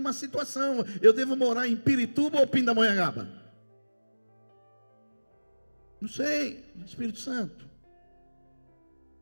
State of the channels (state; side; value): inverted; both; correlation -1.00